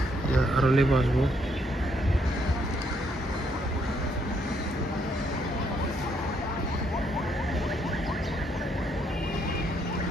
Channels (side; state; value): both; normal; correlation 0.72